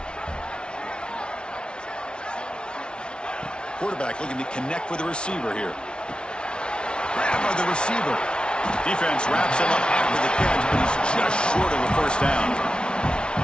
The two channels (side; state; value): right; late; 0.056 ms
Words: Quarterback looking to connect with the receiver here. Grab by the receiver. Defense wraps him up after the catch, but he's just short of a 1st down.